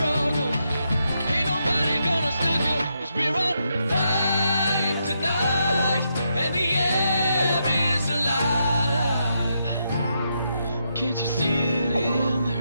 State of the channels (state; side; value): inverted; both; correlation -0.81